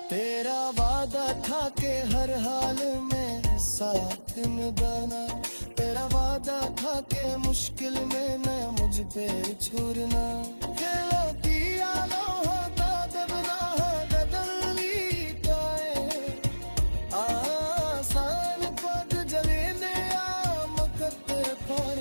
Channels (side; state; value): both; inverted; correlation -1.00